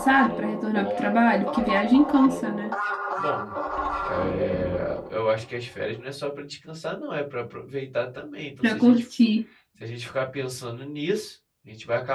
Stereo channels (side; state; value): both; identical; correlation 1.00